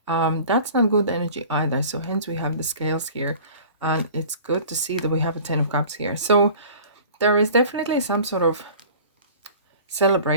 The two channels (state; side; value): inverted; both; correlation -0.44